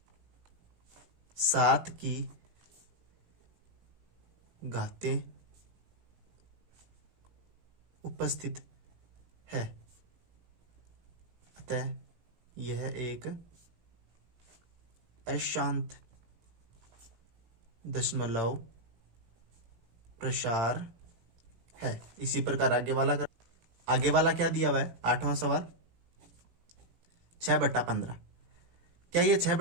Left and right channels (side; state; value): left; late; 18 ms